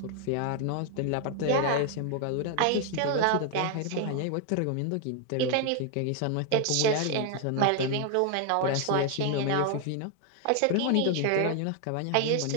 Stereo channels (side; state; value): both; different; correlation 0.00